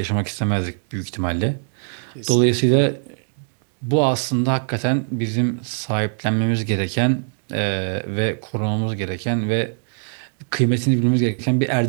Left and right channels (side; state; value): left; silent; 64 dB below the other